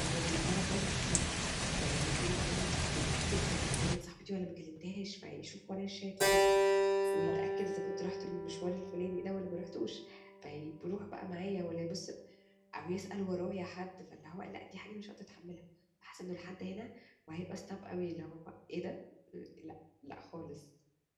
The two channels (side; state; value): both; identical; correlation 1.00